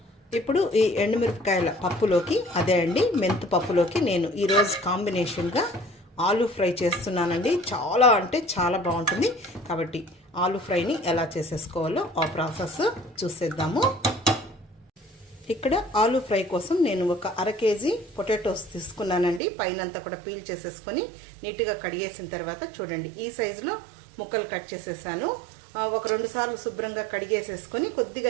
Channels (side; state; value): left; drops out; at 19.4 s